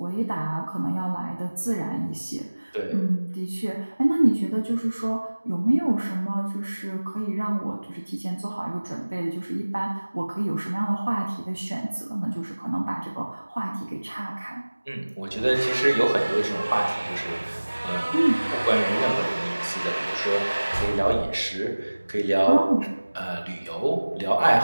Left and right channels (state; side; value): inverted; both; correlation -1.00